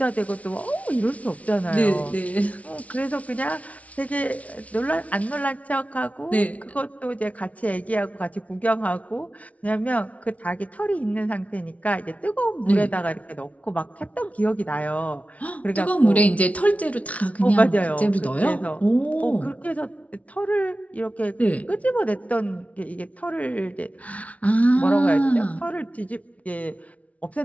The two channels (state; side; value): late; right; 0.067 ms